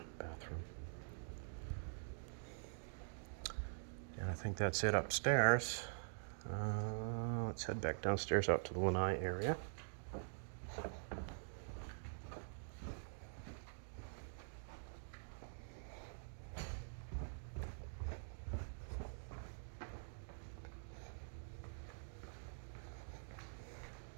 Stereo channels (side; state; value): left; silent; digital silence